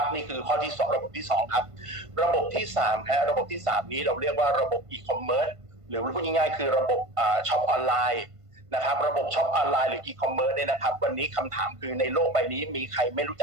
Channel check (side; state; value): left; late; 1.5 ms